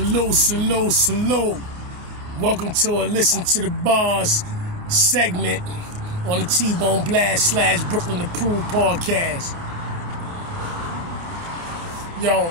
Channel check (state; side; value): late; left; 28 ms